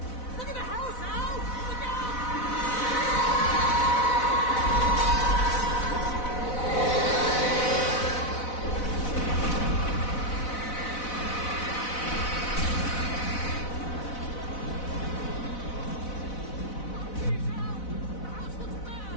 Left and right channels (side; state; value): right; late; 4.0 ms